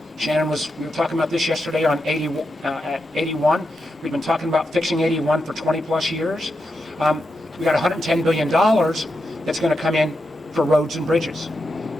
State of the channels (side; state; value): both; normal; correlation 0.86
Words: Shannon we were talking about this yesterday on 81. We've been talking about fixing 81 for 20 plus years. We got $110 billion that's going to come in for roads and bridges